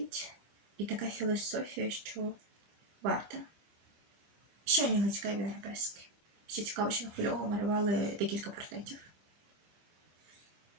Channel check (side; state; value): left; late; 25 ms